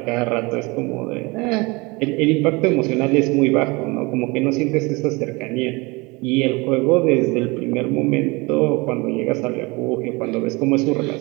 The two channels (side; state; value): left; quieter; 25.6 dB